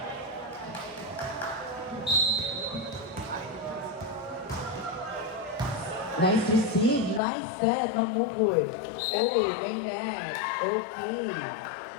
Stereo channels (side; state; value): right; drops out; at 7.2 s